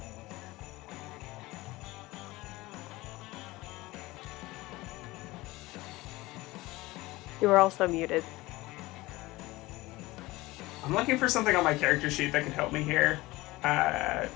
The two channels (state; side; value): quieter; right; 20.0 dB